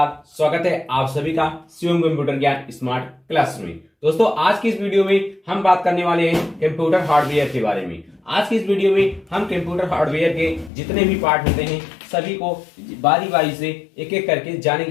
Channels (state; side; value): drops out; right; at 10.7 s